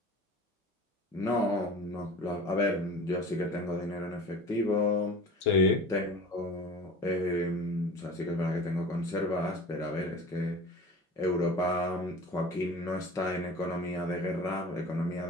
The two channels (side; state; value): both; normal; correlation 0.39